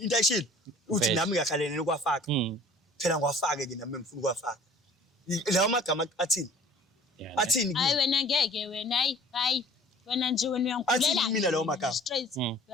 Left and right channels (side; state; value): both; normal; correlation 0.49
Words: into ayishilo uthi Vele. nami ngiyakhalene nokwafaka phela ngiwafake ke nami ngifuna ukwafaka lawo magama athini Yeah, athini hayi wena ngeke wena hayi wena nje wena Athi uyangulela mina lawo magama. straight